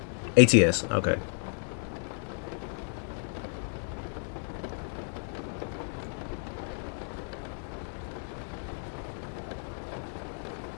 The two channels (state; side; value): silent; right; 56 dB below the other